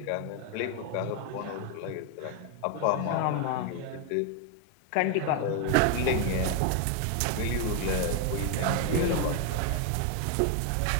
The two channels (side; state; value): both; different; correlation 0.01